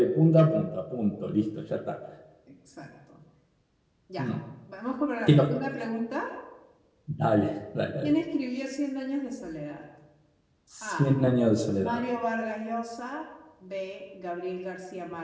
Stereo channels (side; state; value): both; identical; correlation 1.00